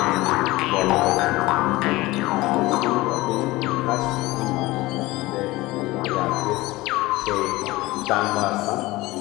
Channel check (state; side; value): quieter; right; 19.7 dB